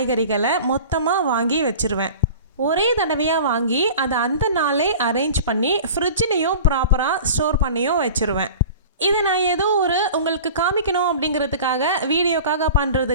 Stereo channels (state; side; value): inverted; both; correlation -0.39